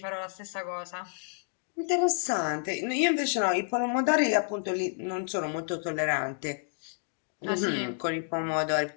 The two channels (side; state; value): right; silent; digital silence